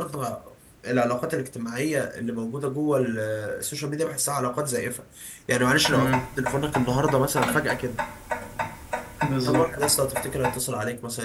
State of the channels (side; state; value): both; identical; correlation 1.00